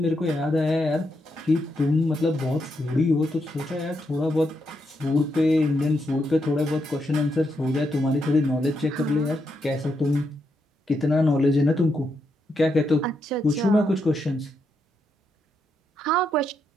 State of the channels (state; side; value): normal; both; correlation 0.81